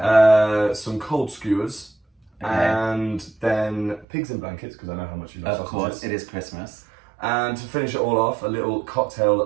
Some cold skewers. Okay. And then pigs in blankets, because I know how much you love sausages. Of course, it is Christmas. And to finish it all off, a little cocktail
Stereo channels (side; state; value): left; drops out; at 4.0 s